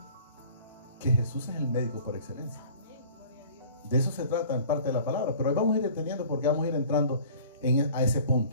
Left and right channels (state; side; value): inverted; both; correlation -0.47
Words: que Jesús es el médico por excelencia. De eso se trata en parte de la palabra. Pero ahí vamos a ir entendiendo, porque vamos a ir entrando a ese